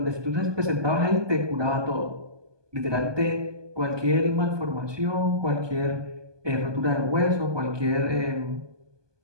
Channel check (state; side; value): late; left; 1.2 ms